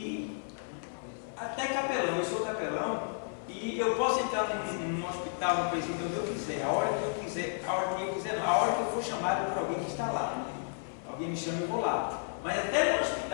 até capelão, eu sou capelão, e eu posso entrar num hospital, num presídio, onde eu quiser, a hora que eu quiser, a hora que eu for chamado por alguém que está lá. Alguém me chama e eu vou lá. Mas até no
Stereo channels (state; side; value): silent; right; 56 dB below the other